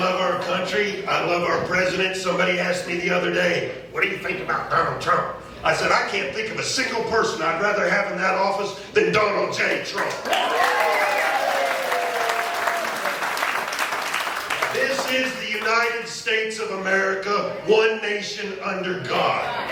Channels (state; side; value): identical; both; correlation 1.00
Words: our country. I love our president. Somebody asked me the other day, what do you think about Donald Trump? I said, I can't think of a single person I'd rather have in that office than Donald J. Trump. This is the United States of America, one nation under God.